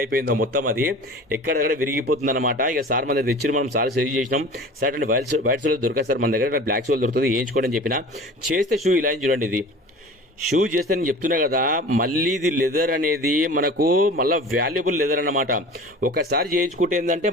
అయిపోయిందో మొత్తం. అది ఎక్కడెక్కడ విరిగిపోతుంది అనమాట. ఇక సార్ మన దగ్గర తెచ్చి మనం సార్ సజెస్ట్ చేసినాం. సార్ అంటే వైట్ సోల్ దొరకదు సార్ మన దగ్గర, బ్లాక్ సోల్ దొరుకుతుంది, వేయించుకోండి అని చెప్పిన. చేస్తే షూ ఇలా చూడండి. ఇది షూ చేస్తే నేను చెప్తున్నా కదా, మళ్ళీ ఇది లెదర్ అనేది మనకు మళ్ళీ వాల్యుబుల్ లెదర్ అన్నమాట. ఒకసారి చేయించుకుంటే ఏంటంటే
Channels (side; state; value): both; normal; correlation 0.39